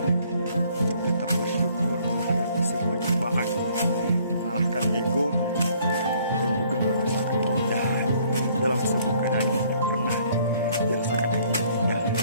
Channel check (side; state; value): both; inverted; correlation -0.62